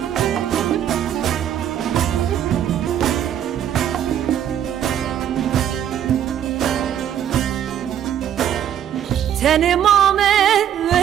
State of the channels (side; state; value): left; quieter; 10.1 dB